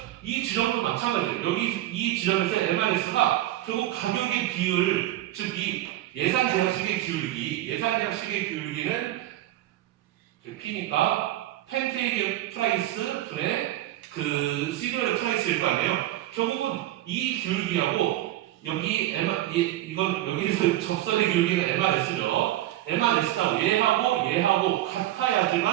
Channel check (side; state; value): left; quieter; 14.5 dB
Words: 이 지점도 마찬가지예요. 여기 이 지점에서 MRS가 결국 가격의 비율, 즉 이 예산 제약식의 기울기는 P니까 팬케이크의 프라이스 분의 그 시리얼의 프라이스일 거 아니에요. 결국은 이 기울기하고 여기 이건 여기서 접선의 기울기는 MRS죠. MRS가 얘하고